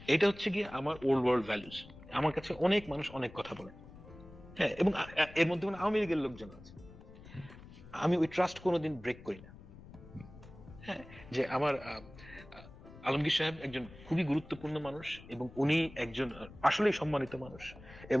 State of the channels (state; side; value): noise; left; rumble, 18 dB below the sound